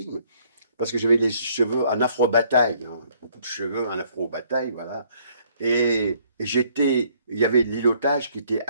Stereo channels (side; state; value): both; inverted; correlation -0.64